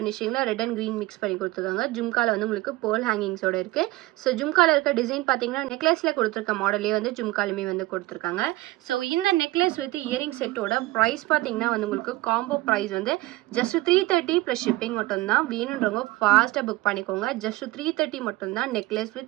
ரெட் அண்ட் க்ரீன் மிக்ஸ் பண்ணி கொடுத்துருக்காங்க. ஜும்காவில் வந்து உங்களுக்கு பேர்ல் ஹேங்கிங்ஸோட இருக்குது. ஸோ ஜும்காவில் இருக்க டிசைன் பார்த்தீங்கன்னா நெக்லஸில் கொடுத்துருக்க மாடலே வந்து ஜும்காலுமே வந்து கொடுத்துருக்காங்க. ஸோ இந்த necklace with earring set price பார்த்தீங்கன்னா வந்து உங்களுக்கு காம்போ பிரைஸ் வந்து ஜஸ்ட் 330 ப்ளஸ் ஷிப்பிங் மட்டும்தான். வேணுன்றவங்க ஃபாஸ்ட்டாக புக் பண்ணிக்கோங்க. ஜஸ்ட் 330 மட்டும்தான் நெக்லஸ்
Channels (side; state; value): left; quieter; 19.1 dB